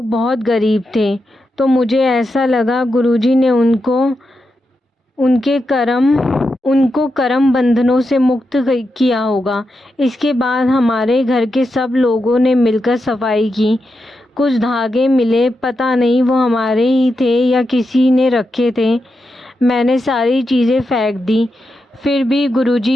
बहुत गरीब थे। तो मुझे ऐसा लगा गुरुजी ने उनके कर्म उनको कर्म बंधनों से मुक्त किया होगा। इसके बाद हमारे घर के सब लोगों ने मिलकर सफाई की। कुछ धागे मिले, पता नहीं वो हमारे ही थे या किसी ने रखे थे। मैंने सारी चीज़ें फेंक दी। फिर भी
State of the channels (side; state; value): both; normal; correlation 0.87